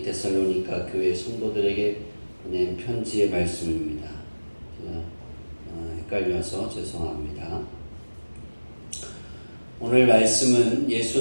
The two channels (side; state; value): both; inverted; correlation -1.00